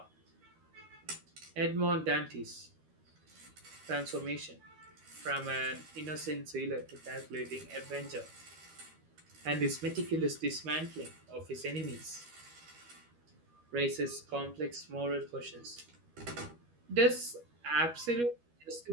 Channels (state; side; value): late; left; 13 ms